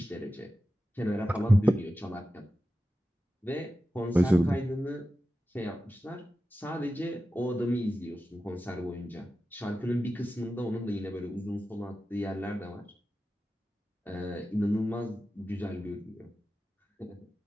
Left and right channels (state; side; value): normal; both; correlation 0.93